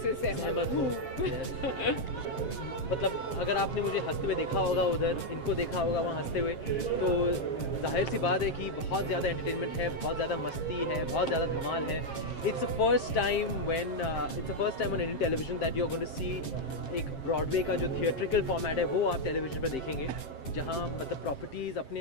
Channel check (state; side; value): late; right; 7.5 ms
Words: सहमत हूँ। मतलब अगर आपने मुझे हंसते हुए देखा होगा, उधर इनको देखा होगा वहाँ हंसते हुए, तो जाहिर सी बात है कि बहुत ज़्यादा एंटरटेनमेंट है, बहुत ज़्यादा मस्ती है, बहुत ज़्यादा धमाल है। It's the first time on Indian television that you are going to see एक ब्रॉडवे का जो थिएट्रिकल फॉर्मेट है वो आप टेलीविजन पर देखेंगे, जहाँ मतलब प्रॉपर्टीज़ अपने